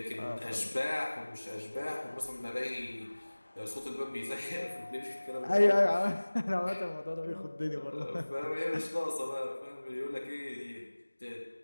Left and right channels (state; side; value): inverted; both; correlation -1.00